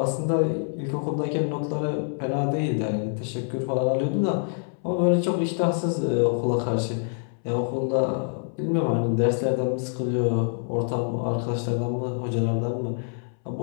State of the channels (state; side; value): silent; right; 61 dB below the other